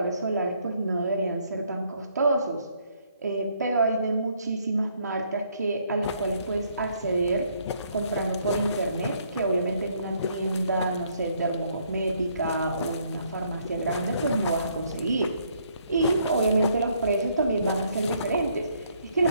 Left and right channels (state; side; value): inverted; both; correlation -0.68